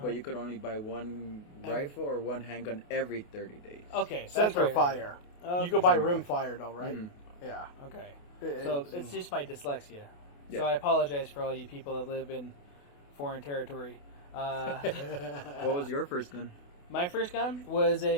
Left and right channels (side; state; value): right; late; 28 ms